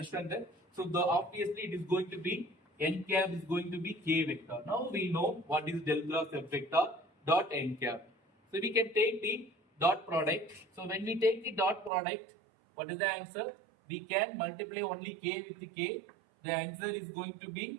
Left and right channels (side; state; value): left; drops out; at 11.9 s